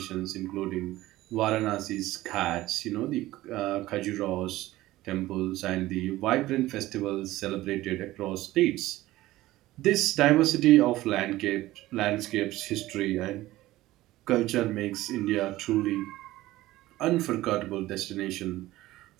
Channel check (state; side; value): quieter; left; 16.7 dB